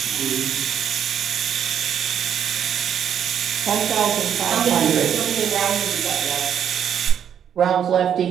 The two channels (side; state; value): left; quieter; 8.9 dB